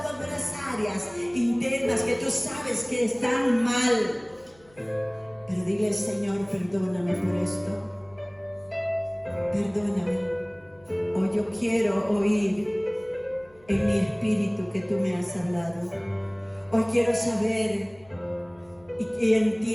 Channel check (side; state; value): left; noise; hum, 29 dB below the sound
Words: algunas áreas internas que tú sabes que están mal. Pero dile, Señor, perdóname por esto. Perdóname. Hoy yo quiero oír en mi espíritu que tú me has hablado. Hoy quiero saber y